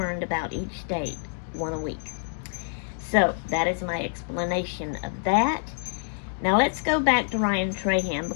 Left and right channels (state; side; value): silent; right; digital silence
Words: about each state, one a week. So that is my explanation of that. Now let's go back to Ryan Trahan